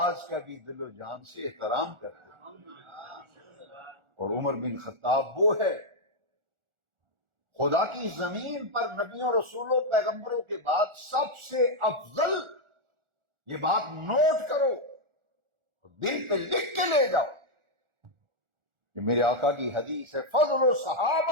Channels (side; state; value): left; late; 1.4 ms